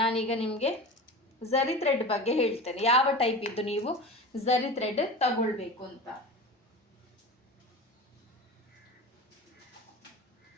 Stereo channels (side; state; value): both; normal; correlation 0.31